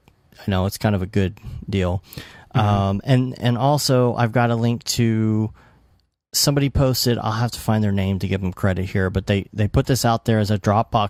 I know it's kind of a good deal. And also I've got a link to somebody posted. I'll have to find their name to give them credit here, but they put this out there as a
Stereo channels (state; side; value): identical; both; correlation 1.00